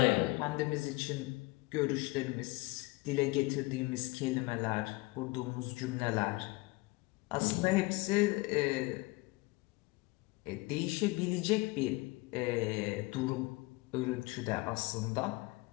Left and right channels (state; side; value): quieter; right; 23.6 dB